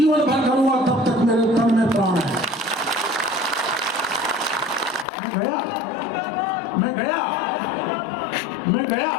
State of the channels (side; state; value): right; drops out; at 5.1 s